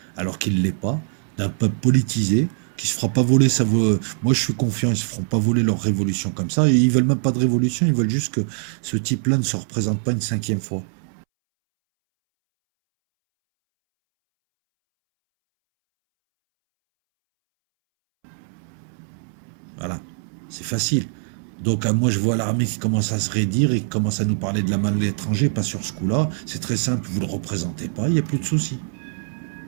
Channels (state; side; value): silent; left; 64 dB below the other